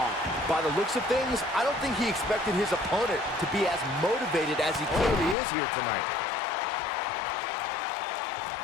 By the looks of things, I don't think he expected his opponent to be as motivated as he clearly is here tonight.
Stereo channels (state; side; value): drops out; right; at 5.4 s